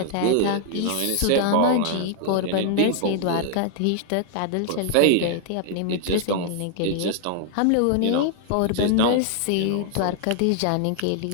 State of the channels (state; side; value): different; both; correlation 0.00